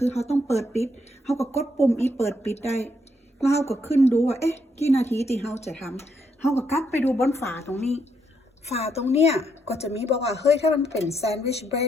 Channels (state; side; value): normal; both; correlation 0.76